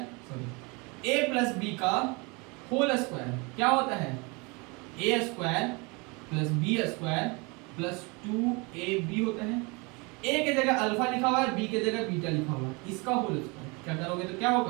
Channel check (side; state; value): left; quieter; 28.6 dB